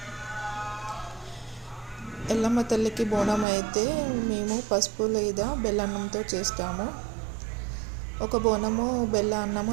ఎల్లమ్మ తల్లికి బోనం అయితే మేము పసుపు లేదా బెల్లన్నంతో చేస్తాము. ఒక బోనము బెల్ల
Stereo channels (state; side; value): drops out; left; at 3.5 s